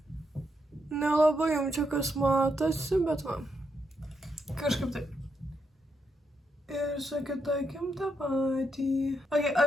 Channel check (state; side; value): normal; both; correlation 0.80